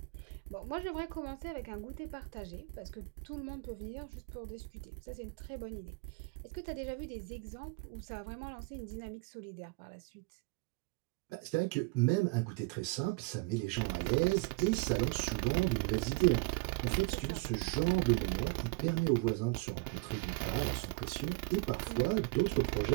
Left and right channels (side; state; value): left; quieter; 26.8 dB